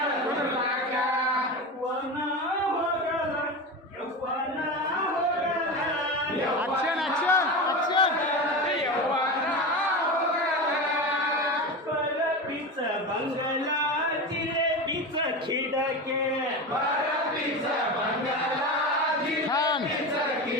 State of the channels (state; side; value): normal; both; correlation 0.24